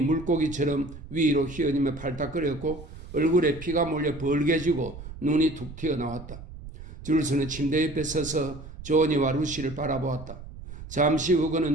물고기처럼 위로 휘어지며 팔딱거렸고 얼굴에 피가 몰려 벌개지고 눈이 툭 튀어나왔다. 줄스는 침대 옆에 서서 조언이와 루시를 바라보았다. 잠시 후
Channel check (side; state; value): right; noise; rumble, 14 dB below the sound